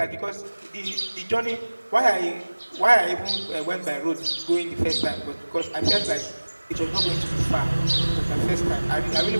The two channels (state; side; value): inverted; both; correlation -1.00